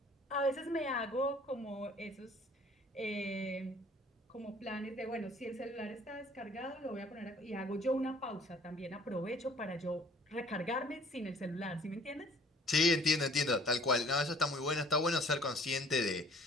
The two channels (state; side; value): normal; both; correlation 0.54